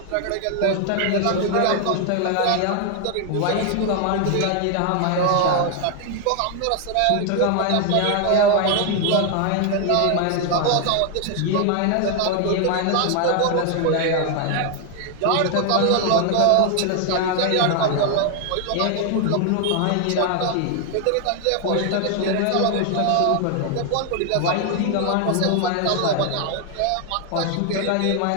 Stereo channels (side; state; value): both; different; correlation 0.00